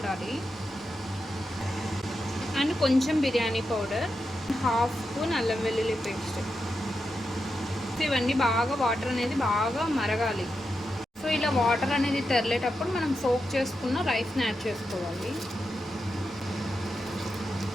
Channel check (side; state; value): both; normal; correlation 0.87